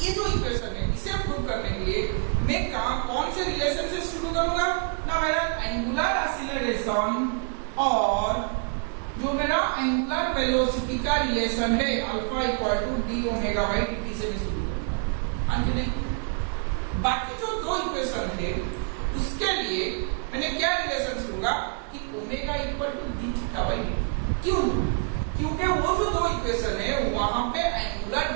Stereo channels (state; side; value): quieter; left; 39.5 dB